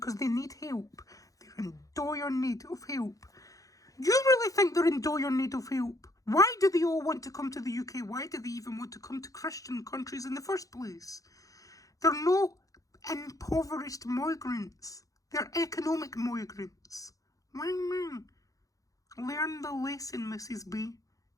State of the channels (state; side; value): late; right; 0.17 ms